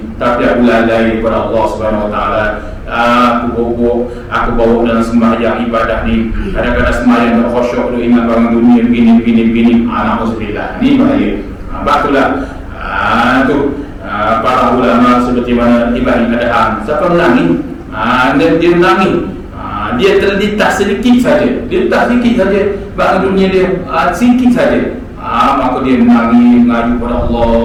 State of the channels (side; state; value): both; identical; correlation 1.00